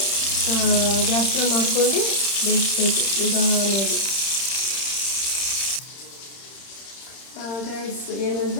ಗ್ಯಾಸ್ನ ಮಾಡ್ಕೊಂಡು ಬೇಯಿಸ್ಬೇಕು ನಿಧಾನವಾಗಿ. ಗೈಸ್,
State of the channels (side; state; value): right; late; 31 ms